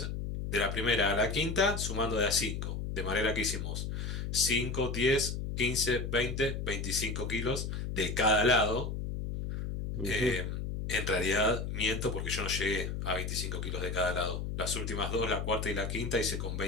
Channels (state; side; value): noise; left; hum, 4 dB below the sound